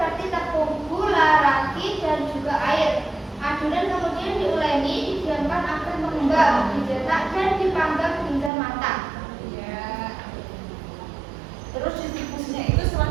tepung, gula, ragi, dan juga air. Adonan kemudian diuleni, didiamkan agar mengembang, dicetak dan dipanggang hingga matang. Ya. Terus distribusinya itu setelah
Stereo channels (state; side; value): drops out; left; at 8.5 s